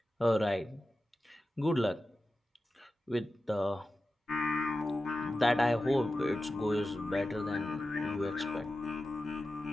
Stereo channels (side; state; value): both; normal; correlation 0.93